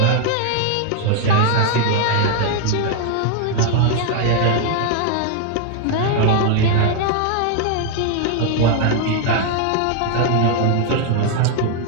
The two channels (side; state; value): both; different; correlation 0.00